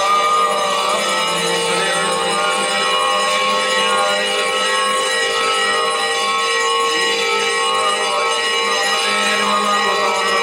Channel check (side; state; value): both; identical; correlation 1.00